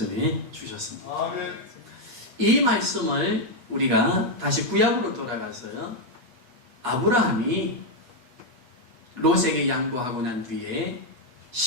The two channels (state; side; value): late; left; 8.2 ms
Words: 주셨습니다. 아멘. 이 말씀을 우리가 다시 구약으로 돌아가서요. 아브라함이 롯에게 양보하고 난 뒤에